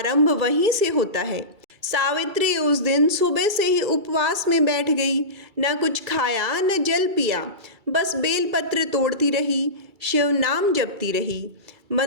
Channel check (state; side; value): late; left; 2.3 ms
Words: वहीं से होता है। सावित्री उस दिन सुबह से ही उपवास में बैठ गई। न कुछ खाया न जल पिया, बस बेलपत्र तोड़ती रही, शिव नाम जपती रही।